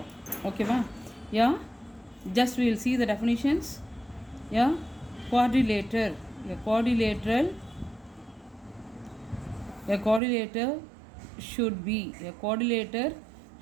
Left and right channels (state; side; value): drops out; left; at 10.2 s